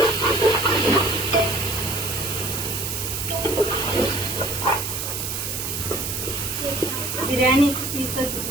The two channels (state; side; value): noise; right; hiss, 4 dB below the sound